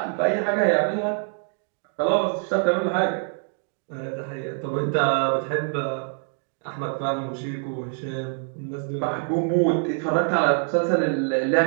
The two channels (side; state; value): left; silent; 57 dB below the other